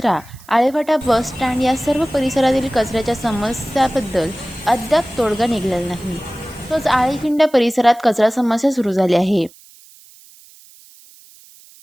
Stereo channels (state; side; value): noise; right; hiss, 24 dB below the sound